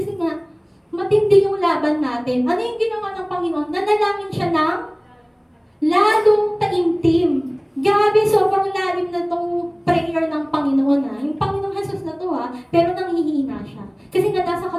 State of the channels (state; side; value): identical; both; correlation 1.00